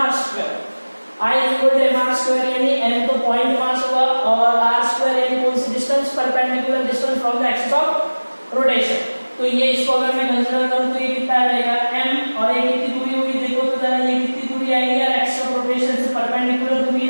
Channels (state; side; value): inverted; both; correlation -1.00